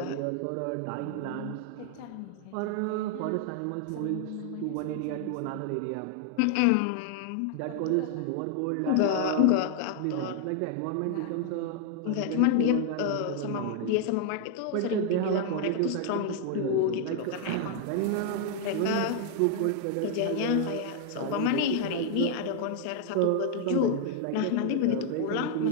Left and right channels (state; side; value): different; both; correlation 0.00